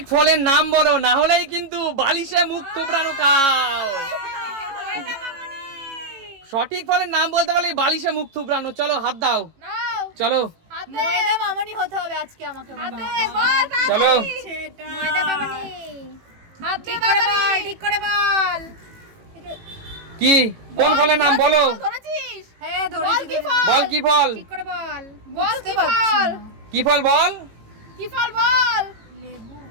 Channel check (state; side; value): late; left; 18 ms